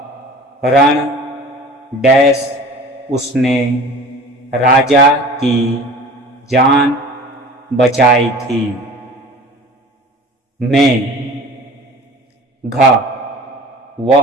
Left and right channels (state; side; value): normal; both; correlation 0.42